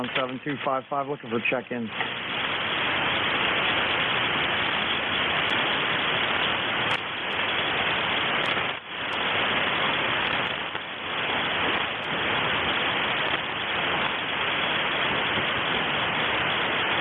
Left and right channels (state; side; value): identical; both; correlation 1.00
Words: 7255, looking for check-in.